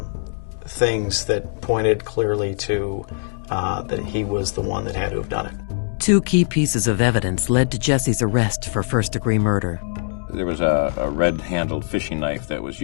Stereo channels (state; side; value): silent; right; 64 dB below the other